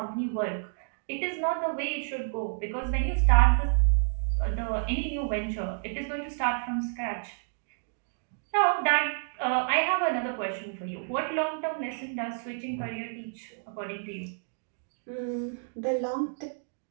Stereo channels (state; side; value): silent; left; digital silence